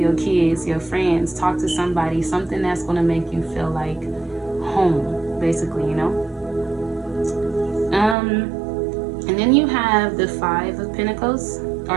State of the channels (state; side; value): drops out; left; at 8.2 s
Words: kids, your friends. Talk to somebody, something that's going to make you feel like home, basically, you know. And then you have the 5 of Pentacles, or